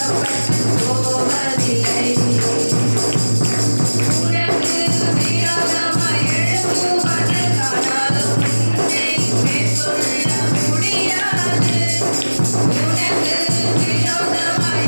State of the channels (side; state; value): both; inverted; correlation -1.00